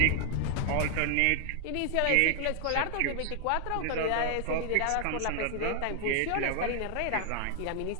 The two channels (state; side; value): different; both; correlation 0.00